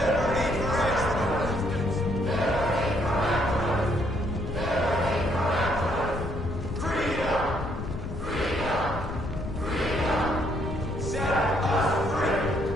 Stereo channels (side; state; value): left; noise; rumble, 7 dB below the sound